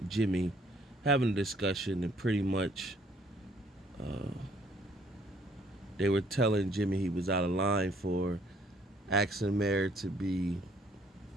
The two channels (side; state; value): both; normal; correlation 0.63